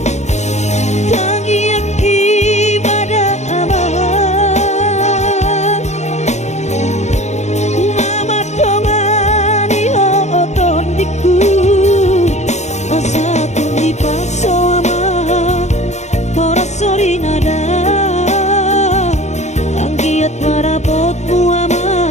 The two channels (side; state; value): right; late; 0.33 ms